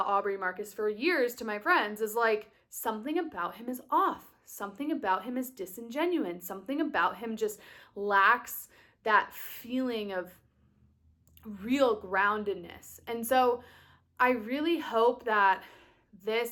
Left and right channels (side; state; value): both; identical; correlation 1.00